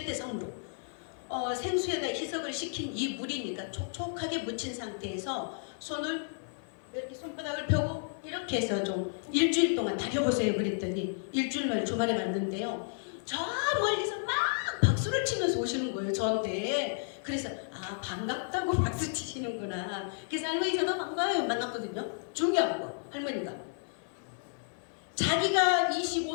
생수에다 희석을 시킨 이 물이니까 촉촉하게 묻힌 상태에서 손을 이렇게 손바닥을 펴고 이렇게 해서 좀 일주일 동안 다려보세요. 그랬더니 일주일 만에 주말에 갔는데요, 저 멀리서 막 박수를 치면서 오시는 거예요 저한테. 그래서 반갑다고 박수 치시는구나. 그래서 할머니 저도 반가워요 만났거든요. 중요한 거, 할머니가 자기가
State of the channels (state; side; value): silent; right; 56 dB below the other